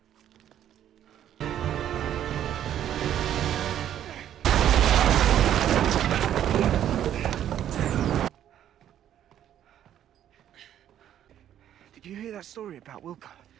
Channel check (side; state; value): left; quieter; 10.8 dB